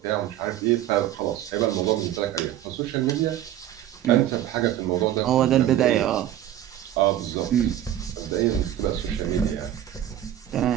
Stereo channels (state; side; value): quieter; left; 11.9 dB